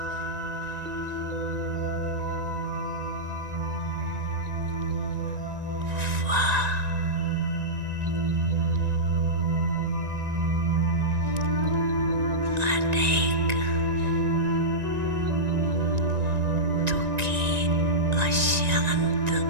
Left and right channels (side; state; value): left; late; 1.9 ms